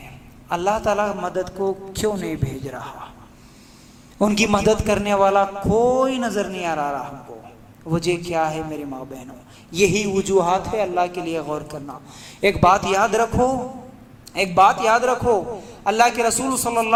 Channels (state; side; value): identical; both; correlation 1.00